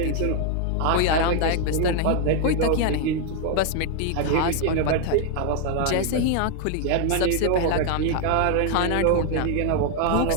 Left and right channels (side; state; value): both; different; correlation 0.00